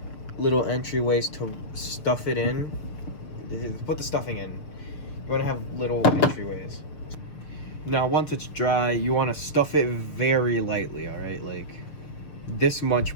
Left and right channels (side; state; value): right; late; 6.7 ms